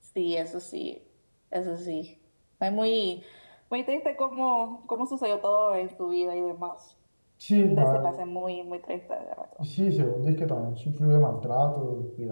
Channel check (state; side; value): inverted; both; correlation -1.00